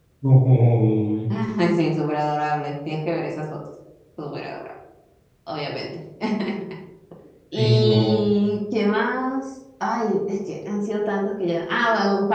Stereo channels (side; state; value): both; identical; correlation 1.00